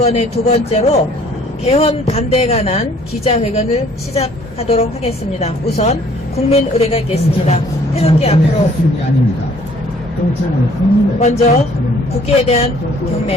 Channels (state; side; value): normal; both; correlation 0.58